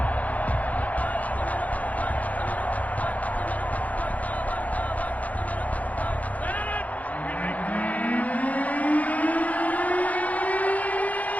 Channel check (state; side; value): late; right; 0.072 ms